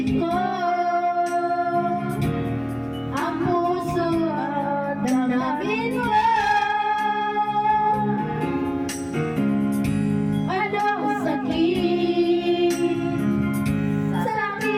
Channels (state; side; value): identical; both; correlation 1.00